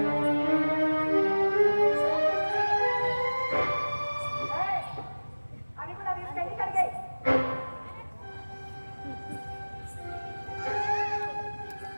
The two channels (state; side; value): inverted; both; correlation -1.00